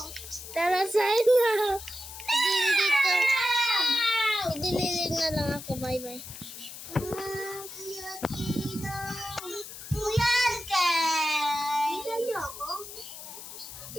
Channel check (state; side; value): noise; left; hiss, 12 dB below the sound